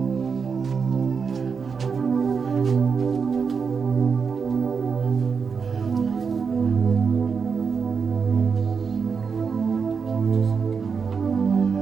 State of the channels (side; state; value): left; quieter; 5.8 dB